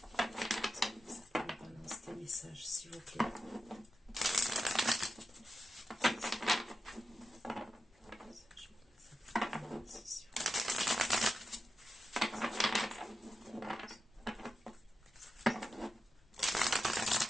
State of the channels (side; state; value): both; normal; correlation 0.90